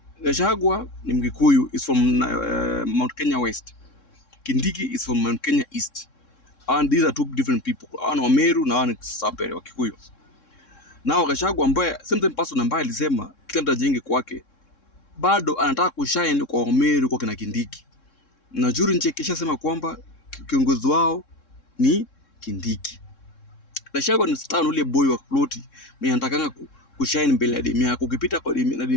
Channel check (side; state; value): right; late; 3.7 ms